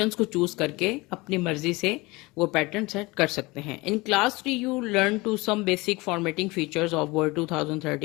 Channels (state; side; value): quieter; right; 23.1 dB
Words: को चूज करके अपनी मर्जी से वो पैटर्न सेट कर सकते हैं। In class 3 you learn to some basic formatting features of Word